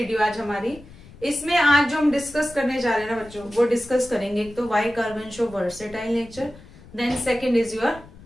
आज हमारी. इसमें आज जो हम डिस्कस करने जा रहे हैं ना बच्चों, वो डिस्कस करेंगे. एक तो why carbon show versatile nature, then second is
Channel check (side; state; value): left; noise; rumble, 20 dB below the sound